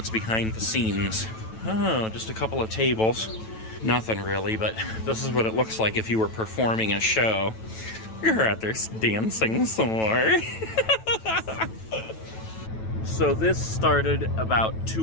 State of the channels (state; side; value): late; right; 9.1 ms